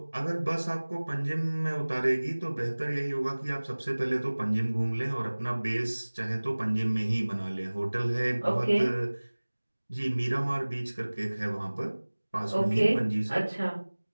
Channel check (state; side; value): inverted; both; correlation -1.00